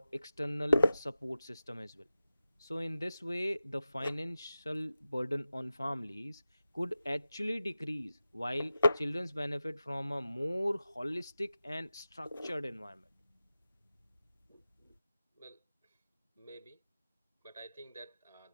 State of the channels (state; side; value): inverted; both; correlation -0.94